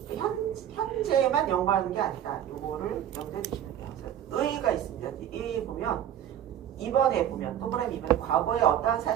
현재만 연구하는 게 아니다. 요거를 염두에 두시면 돼요. 의의가 있습니다. 이 보면 2번에 보면 동그라미 2번에 과거에 어떠한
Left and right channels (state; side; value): quieter; left; 10.4 dB